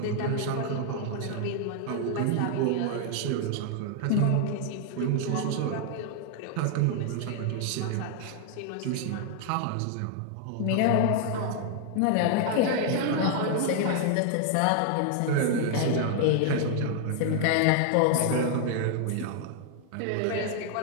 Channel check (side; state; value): both; different; correlation 0.00